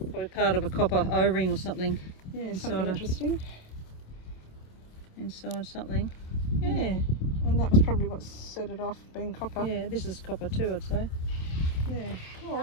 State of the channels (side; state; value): right; late; 27 ms